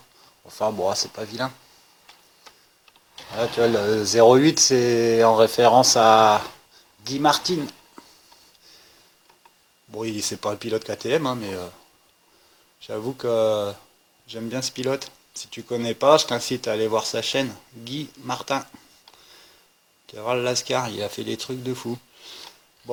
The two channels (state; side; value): identical; both; correlation 1.00